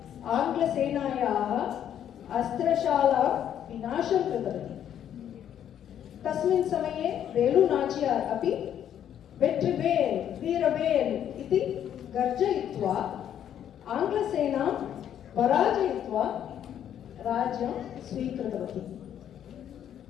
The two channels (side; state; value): right; quieter; 9.9 dB